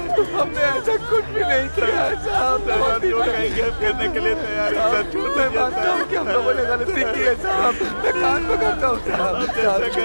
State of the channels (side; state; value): both; inverted; correlation -1.00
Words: हमने ऐसा कुछ भी नहीं किया साहब। करने के लिए तैयार है। मैं मानता हूँ कि हम लोगों ने गलती की है साहब। मैं कान पकड़ता हूँ साहब।